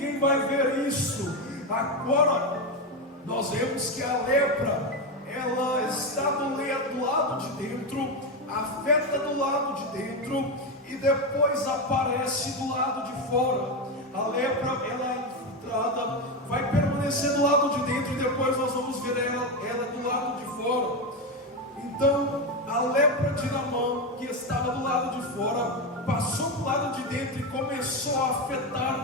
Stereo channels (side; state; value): both; normal; correlation 0.12